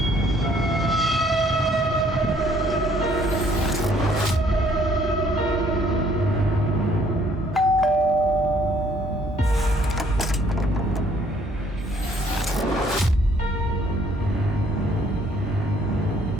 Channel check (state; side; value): normal; both; correlation 0.63